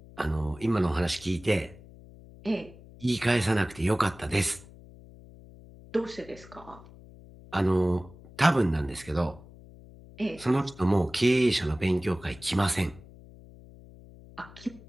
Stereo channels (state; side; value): noise; left; hum, 20 dB below the sound